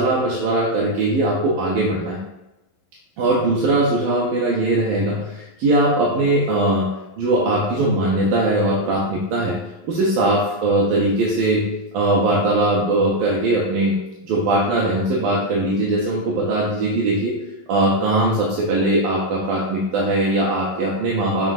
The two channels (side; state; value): left; late; 11 ms